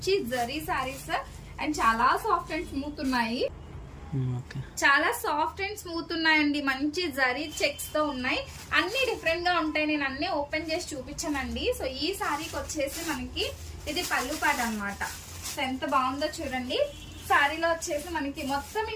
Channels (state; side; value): identical; both; correlation 1.00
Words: జరీ సారీస్ అండ్ చాలా సాఫ్ట్ అండ్ స్మూత్ ఉన్నాయి. చాలా సాఫ్ట్ అండ్ స్మూత్ ఉన్నాయండి. మంచి జరీ చెక్స్ తో ఉన్నాయి. అన్ని డిఫరెంట్ గా ఉంటాయి. నేను అన్ని ఓపెన్ చేసి చూపించానండి. సో ఈ సారీకి వచ్చేసి మనకి ఇది పళ్ళు పాట అన్నమాట. సో ఎంత బాగుందో చూడండి. సారీలో వచ్చేసి మనకి మొత్తం